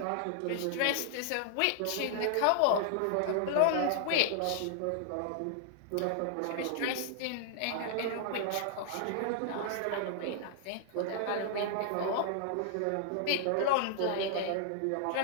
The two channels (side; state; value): both; different; correlation -0.01